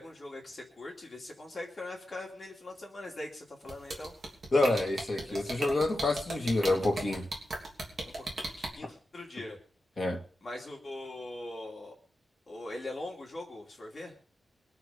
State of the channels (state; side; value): normal; both; correlation 0.91